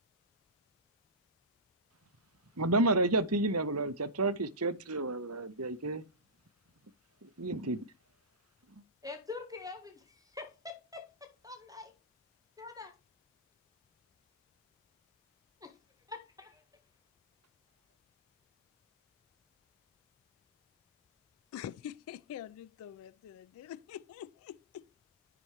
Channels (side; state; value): both; normal; correlation -0.18